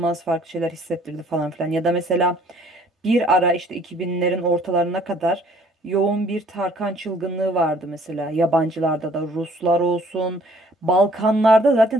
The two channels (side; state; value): both; normal; correlation 0.58